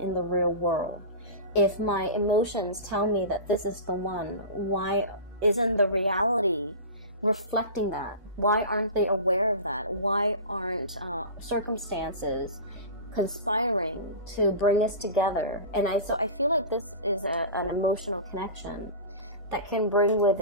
in the real world? If my emotions tell me that this is the one, why isn't the reality reflecting that? Why aren't they aware of that? Why aren't circumstances conspiring to bring us together? And so I feel like this is an emotional connection that can bring with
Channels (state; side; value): inverted; both; correlation -0.30